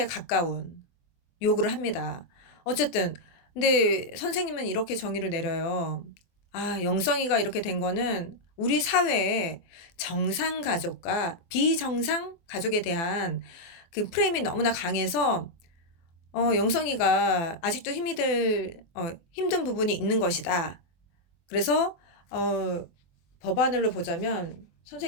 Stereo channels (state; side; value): late; right; 24 ms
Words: 가까운 요구를 합니다. 어쨌든 근데 선생님은 이렇게 정의를 내려요. 영성이가 이렇게 된 거는 우리 사회에 정상 가족과 비정상 가족에 대한 그 프레임이 너무나 강해서 영성이가 아직도 힘든 부분이 있는 것이다. 그래서 법안으로 보자면